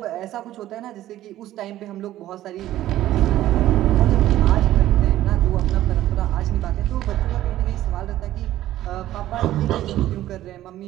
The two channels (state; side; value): quieter; left; 13.9 dB